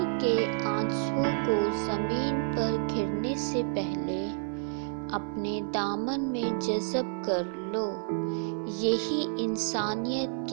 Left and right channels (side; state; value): left; silent; 58 dB below the other